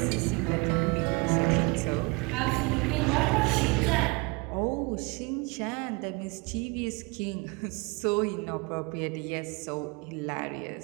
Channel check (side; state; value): left; quieter; 27.6 dB